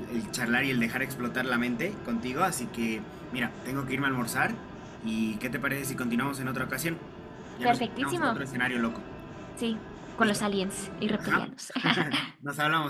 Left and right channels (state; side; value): identical; both; correlation 1.00